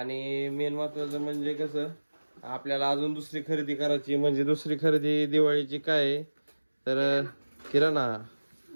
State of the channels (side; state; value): both; inverted; correlation -1.00